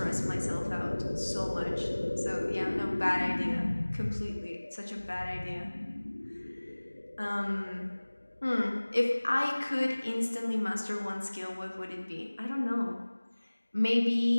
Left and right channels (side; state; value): both; inverted; correlation -1.00